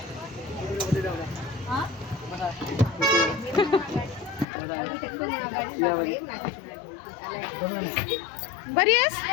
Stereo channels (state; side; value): drops out; right; at 4.5 s